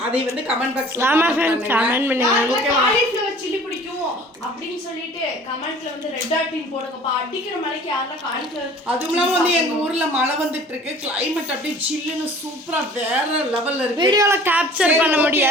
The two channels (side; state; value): both; normal; correlation 0.48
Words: அதை வந்து கமெண்ட் பாக்ஸ்ல கமெண்ட் பண்ணுங்க. காலிஃப்ளவர் சில்லி பிடிக்கும் அப்படின்னு சொல்லிட்டு கமெண்ட்ல வந்து ரெட் டாட்டின் போடுங்கப்பா. அடிக்கிற மலைக்கு யாரெல்லாம் காலிஃப்ளவர். அதுவும் இல்லாம வந்து எங்க ஊர்ல மழை வந்துட்டு இருக்கு. கிளைமேட் அப்படியே சில்லுன்னு சூப்பரா வேற லெவல்ல இருக்கு. வீடியோல கேப்சர் பண்ண